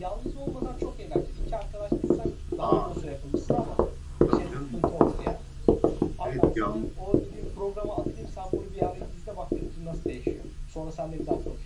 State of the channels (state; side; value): identical; both; correlation 1.00